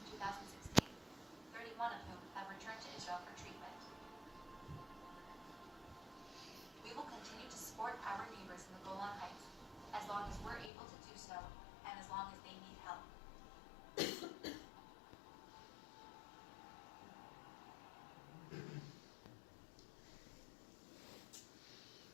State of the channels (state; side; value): drops out; right; at 10.7 s